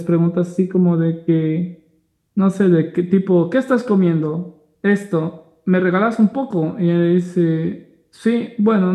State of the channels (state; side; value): identical; both; correlation 1.00